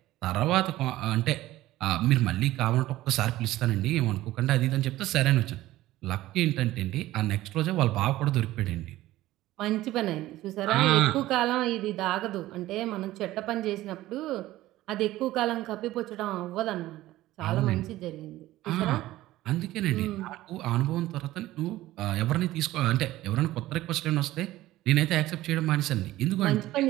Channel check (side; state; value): left; quieter; 16.1 dB